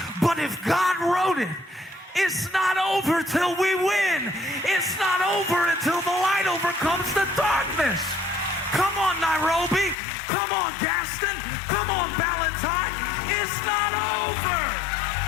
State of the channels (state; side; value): drops out; right; at 10.0 s